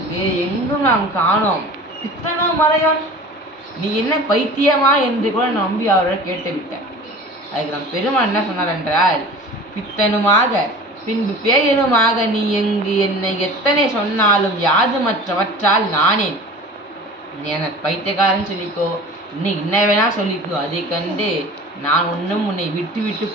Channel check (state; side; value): normal; both; correlation 0.40